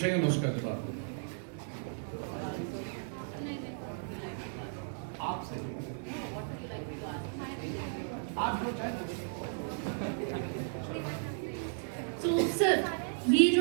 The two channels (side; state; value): left; silent; digital silence